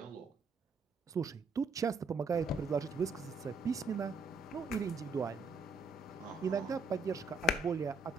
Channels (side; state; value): left; quieter; 3.0 dB